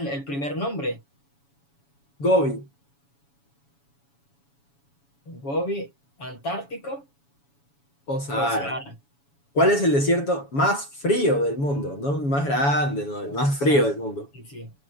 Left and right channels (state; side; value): late; right; 7.1 ms